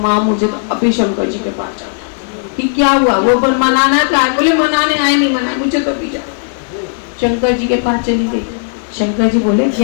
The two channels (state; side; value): silent; right; digital silence